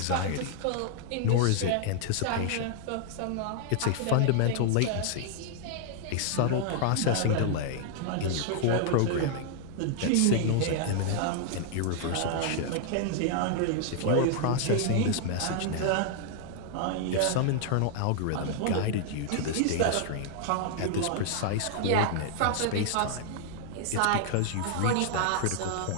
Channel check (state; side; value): different; both; correlation 0.00